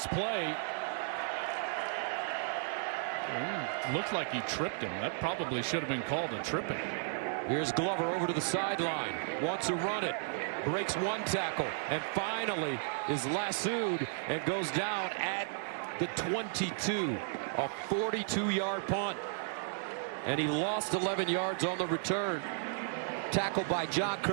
play. Looked like he tripped him. That probably should have been called a tripping. Here's Glover over to the sideline. Wants to run it. Breaks one tackle. And finally is lassoed and goes down at the 22. A 42-yard punt. And he lost 11 yards on the return. Tackled by John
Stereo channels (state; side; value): silent; left; digital silence